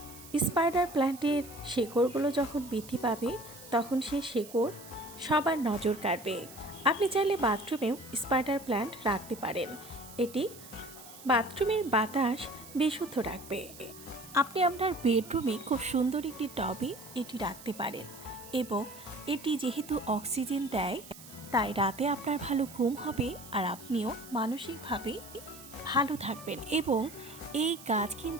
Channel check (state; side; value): noise; right; hiss, 17 dB below the sound